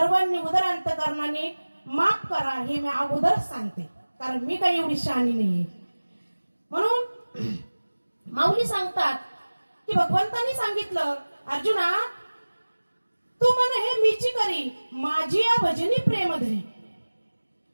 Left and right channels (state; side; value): inverted; both; correlation -1.00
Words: उदर अंतकरणाने माफ करा हे मी अगोदर सांगते कारण मी काही एवढी शहाणी नाहीये म्हणून माऊली सांगतात की भगवंतांनी सांगितलं अर्जुना तू मन हे मीची करी माझी या भजनी प्रेम धरी